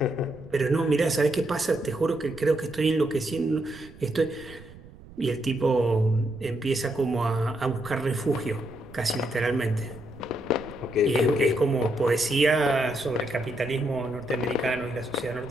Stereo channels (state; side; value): noise; right; rumble, 19 dB below the sound